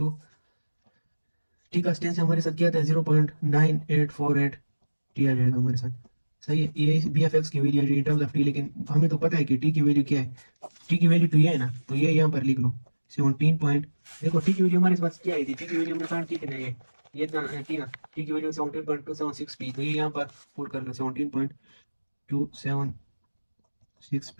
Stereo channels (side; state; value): both; inverted; correlation -1.00